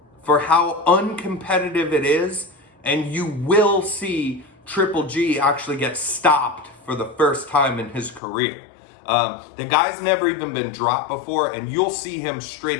for how uncompetitive it is, and you will see Triple G actually get stopped for the first time in his career. The guy's never even been dropped before, and you'll see him straight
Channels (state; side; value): drops out; right; at 8.2 s